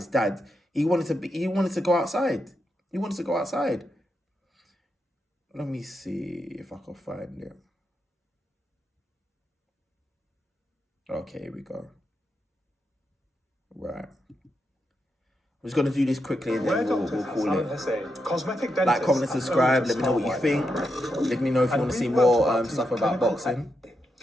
dad, he wanted to go outside. He wanted to go outside. Let me see if I can find it. Okay, here we go. Right. I'm just going to do this quickly and then we'll call it. Cosmetic Like, comment, and subscribe. Let me know what you think. Let me know if you want to see more stuff about boxing.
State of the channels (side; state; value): both; normal; correlation 0.84